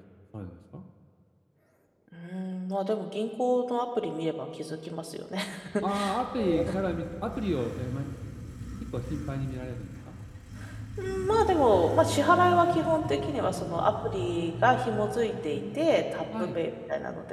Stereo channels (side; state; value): both; identical; correlation 1.00